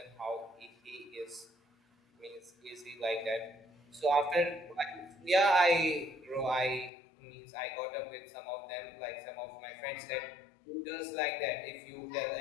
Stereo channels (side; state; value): right; drops out; at 6.9 s